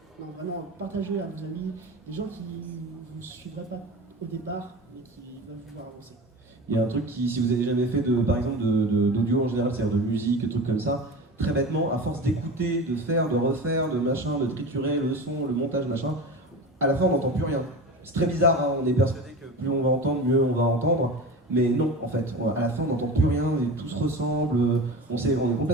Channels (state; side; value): normal; both; correlation 0.30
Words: Non vraiment partagez à vos amis, des gens qui ne vous suivraient pas au départ mais qui veulent vous voir avancer. Il y a un truc qui, si vous avez jamais fait par exemple d'audio en général, c'est-à-dire de musique, de trucs comme ça, très bêtement, à force d'écouter, de faire, de refaire, de machin, de triturer le son, le montage, machin, à la fin on n'entend plus rien. C'est très bizarre, hein, on est persuadé que plus on va entendre, mieux on va entendre, mais non en fait, à la fin on n'entend plus rien, et tout se ressemble, on est